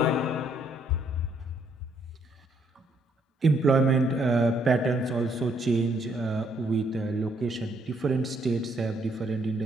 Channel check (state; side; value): normal; both; correlation 0.69